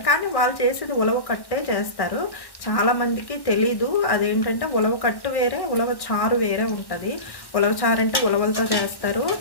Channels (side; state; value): right; late; 1.1 ms